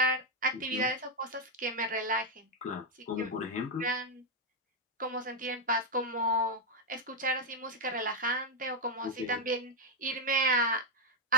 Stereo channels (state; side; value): normal; both; correlation 0.01